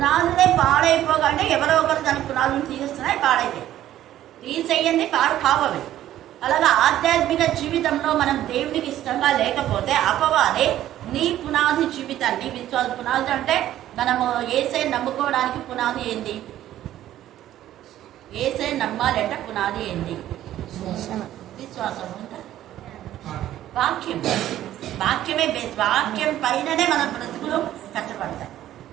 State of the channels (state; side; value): quieter; left; 12.8 dB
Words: పాడైపోగానే ఎవరో ఒకరు దాని పునాదులు తీస్తున్నాయి, పాడైతాయి. తీసేయండి, పాడు కావవి. అలాగా ఆధ్యాత్మిక జీవితంలో మనం దేవునికి ఇష్టంగా లేకపోతే అపవాది నీ పునాది జీవితాన్ని, విశ్వాస పునాది అంటే మనము ఏసై నమ్ముకోవడానికి పునాది ఏంది? ఏసై నమ్మాలంటే పునాది ఏంది? విశ్వాసం. వాక్యం, వాక్యమే బేస్. వాక్యం పైననే మన బ్రతుకులు కట్టబడతాయి.